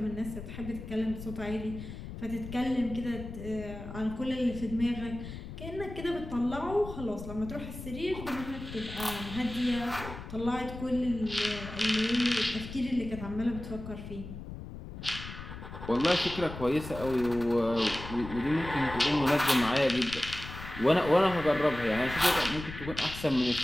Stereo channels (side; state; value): left; noise; rumble, 11 dB below the sound